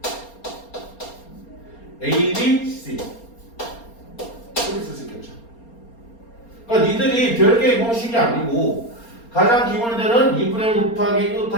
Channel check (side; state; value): right; late; 4.3 ms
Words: A, B, C 이렇게 쓸 수 있겠죠. 그러니까 니들이 별개의 공식이 아니고 가장 기본이 되는 2분의 1 곱하기